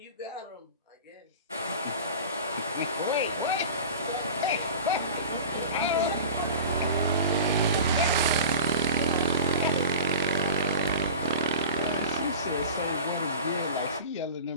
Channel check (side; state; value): both; inverted; correlation -0.34